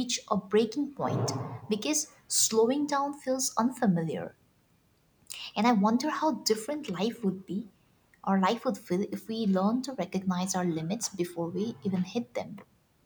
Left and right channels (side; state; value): both; identical; correlation 1.00